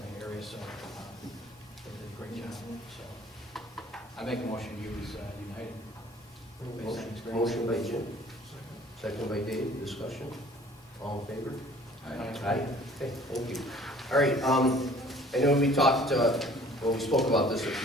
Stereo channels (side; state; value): both; normal; correlation 0.52